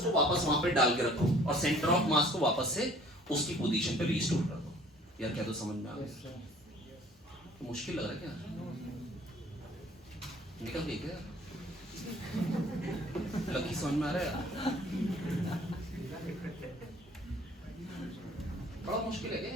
वापस वहां पे डाल के रखो और सेंटर ऑफ मास को वापस से उसकी पोजीशन पे रिस्टोर कर दो। यार क्या तो समझ में आ गया, तो मुश्किल लग रहा है क्या, निकल गई क्या, लकी समझ में आ रहा है, बड़ा मुश्किल है क्या,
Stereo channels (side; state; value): both; normal; correlation 0.53